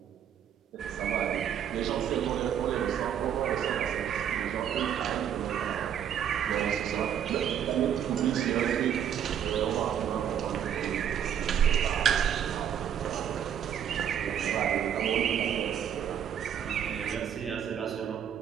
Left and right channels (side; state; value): left; quieter; 9.2 dB